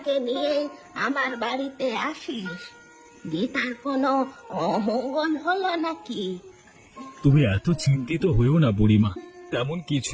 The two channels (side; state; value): both; identical; correlation 1.00